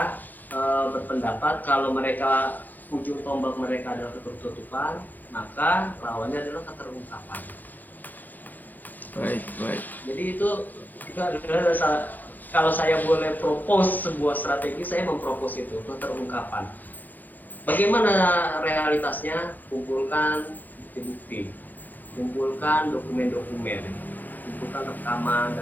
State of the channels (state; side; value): late; right; 0.084 ms